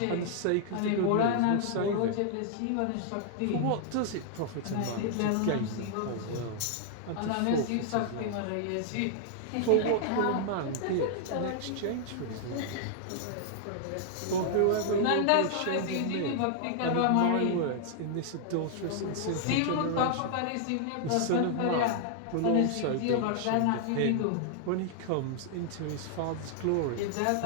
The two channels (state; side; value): different; both; correlation 0.00